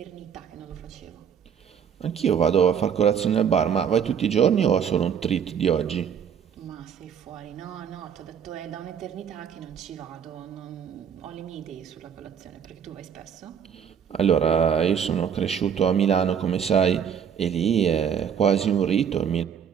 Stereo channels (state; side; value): quieter; left; 7.8 dB